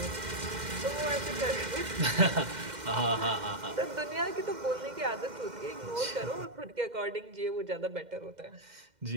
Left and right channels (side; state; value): left; late; 2.1 ms